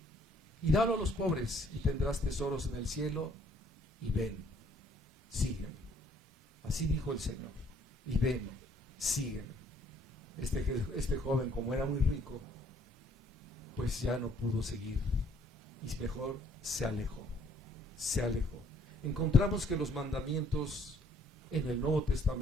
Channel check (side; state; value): both; normal; correlation 0.63